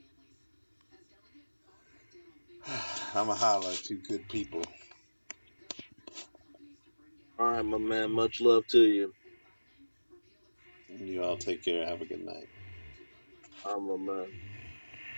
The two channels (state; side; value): inverted; both; correlation -1.00